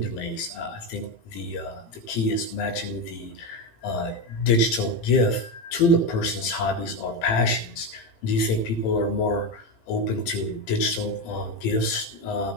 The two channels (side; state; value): right; late; 18 ms